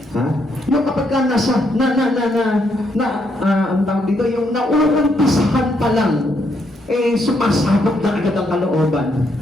Ha? Yung kapag nasa, ang tawag dito, yung nauumpisahan pa lang, eh, sumasabog na agad ang kalooban.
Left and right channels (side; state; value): both; normal; correlation 0.75